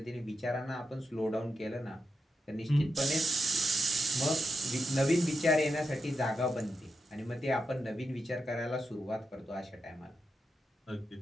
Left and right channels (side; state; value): both; normal; correlation 0.86